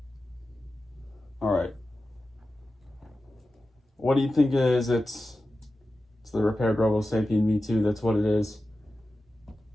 Alright. What do you think it is? It's the repaired Robosapien V2, that's what it is.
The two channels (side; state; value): both; normal; correlation 0.93